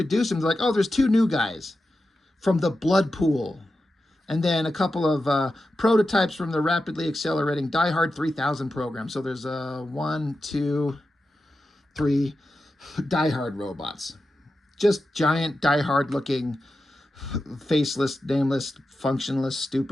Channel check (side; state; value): both; normal; correlation 0.91